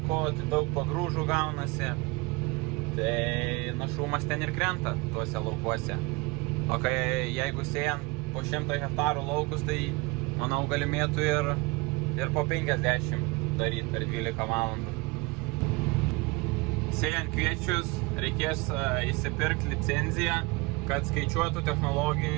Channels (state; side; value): quieter; left; 25.1 dB